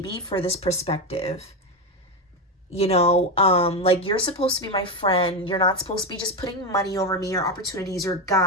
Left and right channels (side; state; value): both; normal; correlation 0.13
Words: for this perspective. Like, you're supposed to be my friend. You're not supposed to be just putting money over me or opportunities or